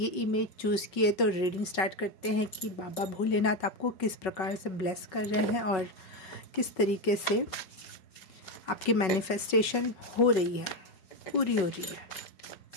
इमेज चूज़ की है तो रीडिंग स्टार्ट करते हैं कि बाबा भोलेनाथ आपको किस प्रकार से ब्लेस कर रहे हैं और किस तरीके से आपकी मैनिफेस्टेशन हो रही है, पूरी हो रही है।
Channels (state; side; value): late; right; 5.3 ms